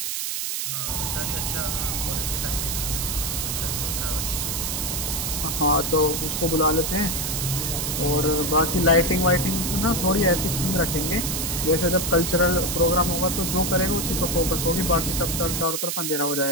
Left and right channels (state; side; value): noise; right; hiss, 1 dB below the sound